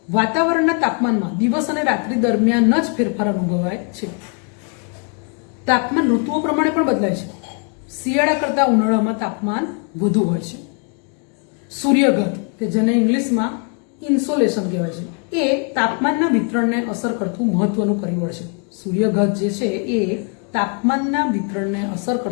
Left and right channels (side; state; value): right; quieter; 38.6 dB